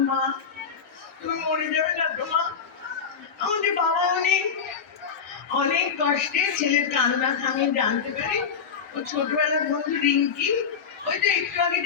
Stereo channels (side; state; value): right; quieter; 6.4 dB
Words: মা তুমি মরে যাবে না তো মা? আমাদের বাবা অনেক কষ্টে ছেলের কান্না থামিয়ে জানতে পারি ও ছোটবেলার বন্ধু রিঙ্কি, ওই তো একটু আগে